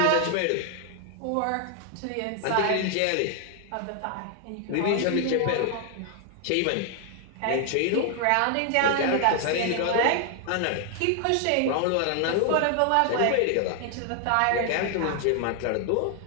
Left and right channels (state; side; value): different; both; correlation 0.00